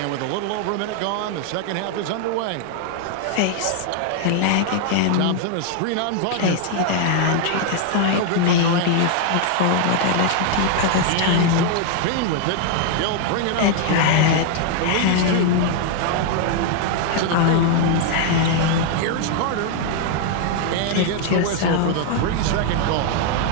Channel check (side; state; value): both; different; correlation 0.00